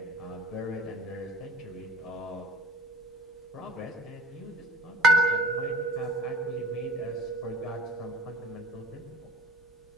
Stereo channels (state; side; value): normal; both; correlation 0.41